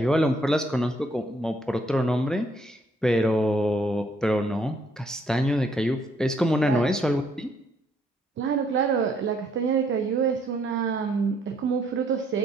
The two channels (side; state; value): both; normal; correlation 0.68